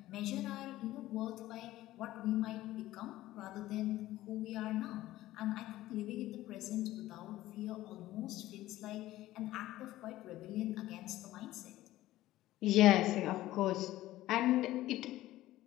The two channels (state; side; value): quieter; right; 15.6 dB